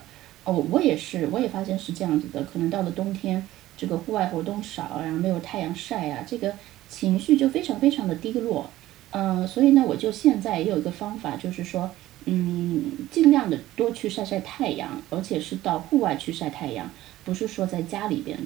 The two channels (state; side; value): quieter; left; 15.4 dB